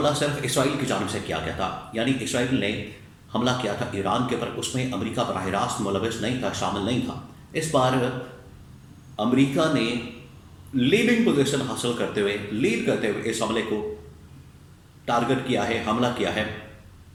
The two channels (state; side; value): identical; both; correlation 1.00